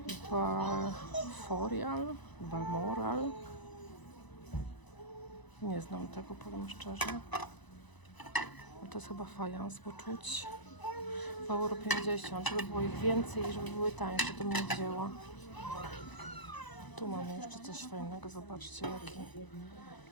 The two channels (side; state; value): right; late; 1.0 ms